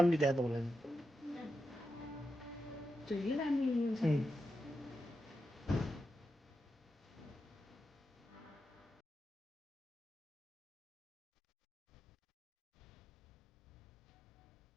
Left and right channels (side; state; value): both; normal; correlation 0.88